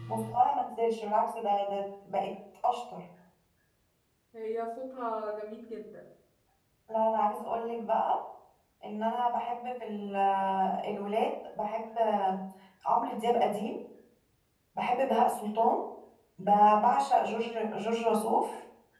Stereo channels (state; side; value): identical; both; correlation 1.00